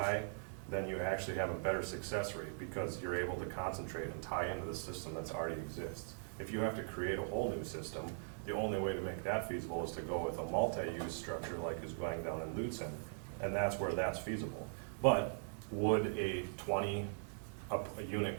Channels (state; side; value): silent; left; digital silence